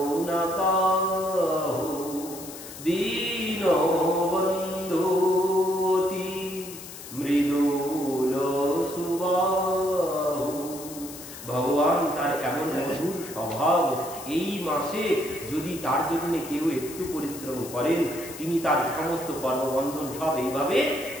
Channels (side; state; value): left; noise; hiss, 13 dB below the sound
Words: না কাহু, দীন বন্ধু অতি মৃদুল সুবাহু। ভগবান তার এমন মধুর স্বভাব, এই মাসে যদি তার জন্য কেউ একটু পরিশ্রম করেন, তিনি তার সমস্ত কর্মবন্ধন সব এইভাবে